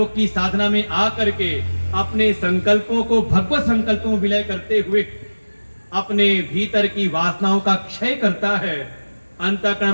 की साधना में आकर के अपने संकल्पों को भगवत संकल्पों में विलय करते हुए अपने भीतर की वासनाओं का क्षय करता है, अंतःकरण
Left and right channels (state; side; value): inverted; both; correlation -1.00